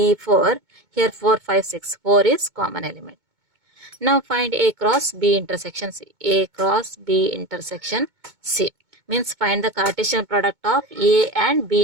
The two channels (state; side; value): late; left; 2.2 ms